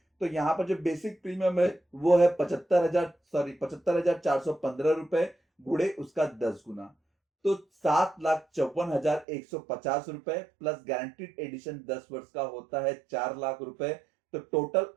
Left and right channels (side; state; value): left; drops out; at 9.2 s